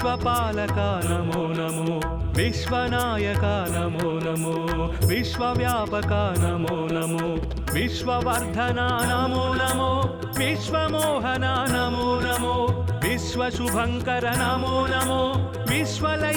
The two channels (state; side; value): identical; both; correlation 1.00